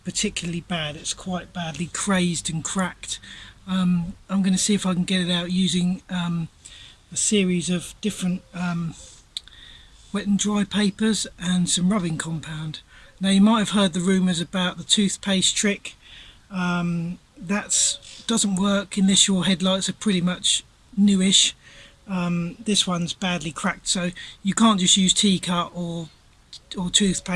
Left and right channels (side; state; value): both; identical; correlation 1.00